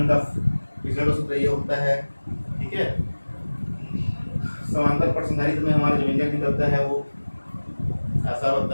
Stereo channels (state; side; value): inverted; both; correlation -1.00